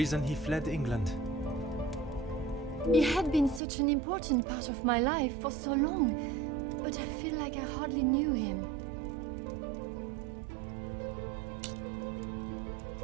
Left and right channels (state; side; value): drops out; left; at 3.6 s